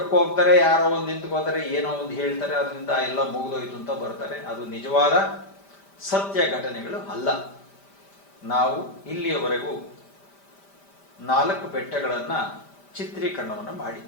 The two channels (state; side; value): late; right; 5.1 ms